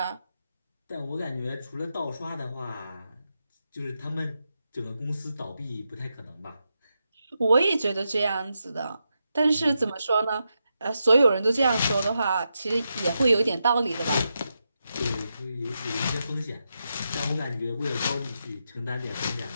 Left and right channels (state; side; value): inverted; both; correlation -0.86